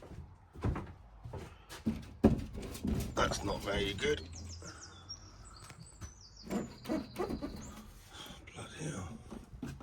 That's not very good. Bloody hell.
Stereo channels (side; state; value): both; identical; correlation 1.00